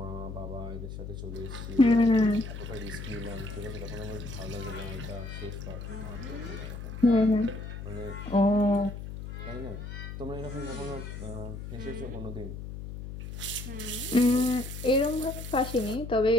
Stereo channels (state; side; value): noise; left; hum, 9 dB below the sound